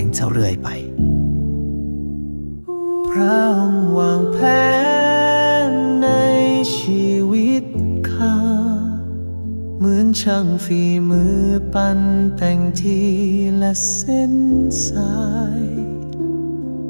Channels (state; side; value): inverted; both; correlation -1.00